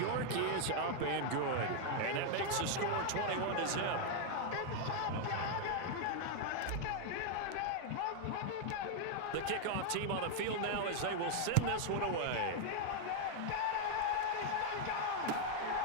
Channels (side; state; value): both; different; correlation 0.00